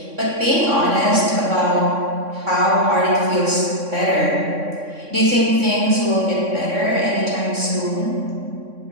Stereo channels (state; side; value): late; left; 3.6 ms